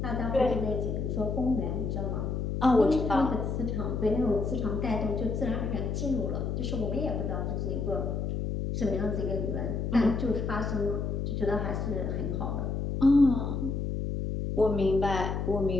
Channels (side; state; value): left; noise; hum, 2 dB below the sound